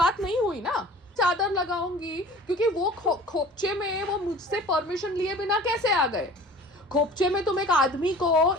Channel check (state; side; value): normal; both; correlation 0.44